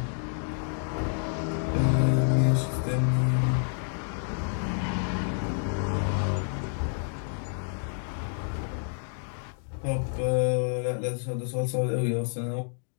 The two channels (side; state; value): right; silent; 59 dB below the other